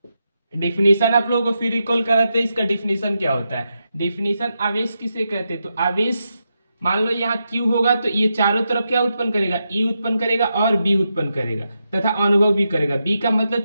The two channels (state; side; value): inverted; both; correlation -0.86